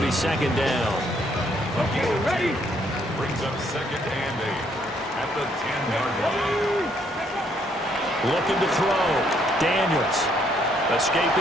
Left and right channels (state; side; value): normal; both; correlation 0.69